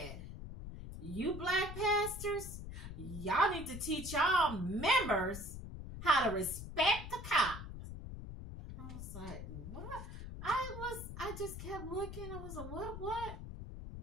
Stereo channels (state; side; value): noise; left; rumble, 9 dB below the sound